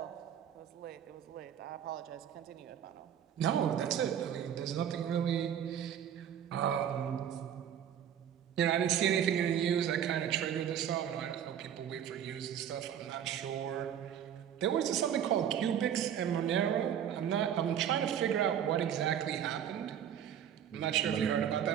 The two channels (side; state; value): left; quieter; 9.4 dB